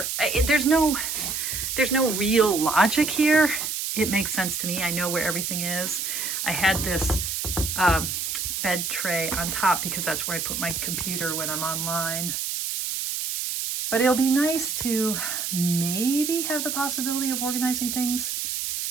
there's no real logic here. It makes sense to me. I know where everything is. I had this bed tray on top because that's where I put my computer when I'm online. But it'll be nice to maybe have the possibility of organizing things,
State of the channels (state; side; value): noise; right; hiss, 2 dB below the sound